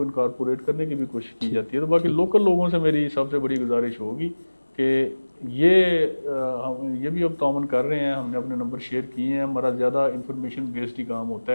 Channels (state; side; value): inverted; both; correlation -1.00